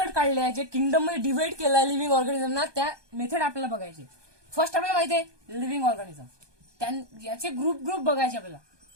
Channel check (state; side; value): late; left; 1.2 ms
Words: काढले आहे, जे किंगडम मध्ये डिवाइड केलं आहे लिव्हिंग ऑर्गॅनिझमना, त्या मेथड आपल्याला बघायचे. फर्स्ट आपल्याला माहिती आहे लिव्हिंग ऑर्गॅनिझम, याचे ग्रुप बघायचे आपल्याला.